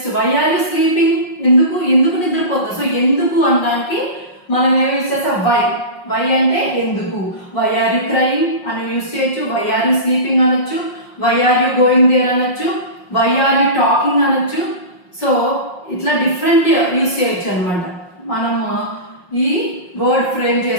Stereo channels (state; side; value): late; right; 5.6 ms